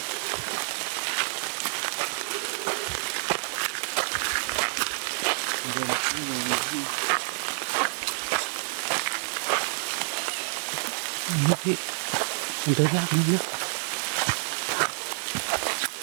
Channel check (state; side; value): silent; left; digital silence